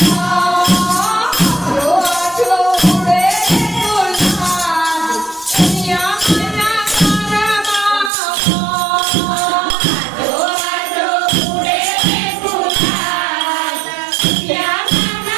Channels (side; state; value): left; drops out; at 8.1 s